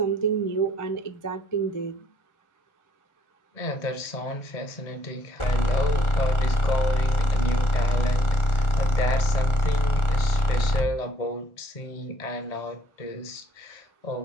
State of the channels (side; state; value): right; late; 1.4 ms